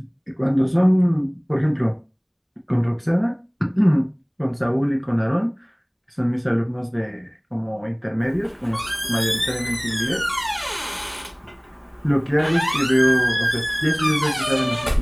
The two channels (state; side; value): identical; both; correlation 1.00